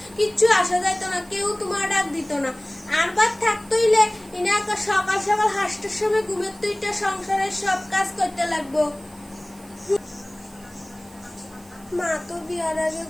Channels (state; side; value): noise; right; hiss, 24 dB below the sound